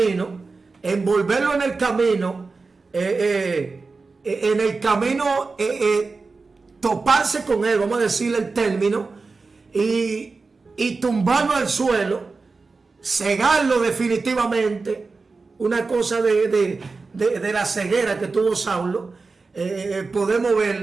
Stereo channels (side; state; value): left; quieter; 4.1 dB